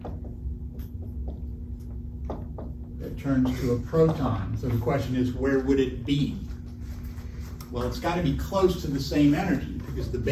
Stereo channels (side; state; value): both; identical; correlation 1.00